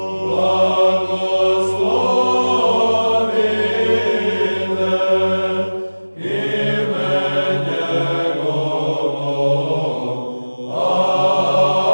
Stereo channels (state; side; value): inverted; both; correlation -1.00